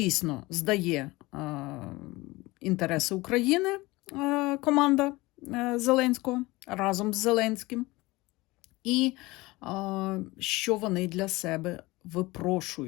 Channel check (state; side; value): quieter; right; 21.2 dB